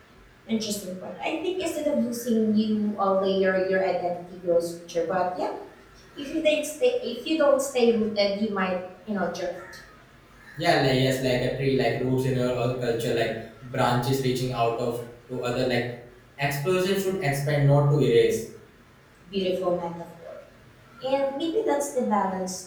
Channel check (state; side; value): identical; both; correlation 1.00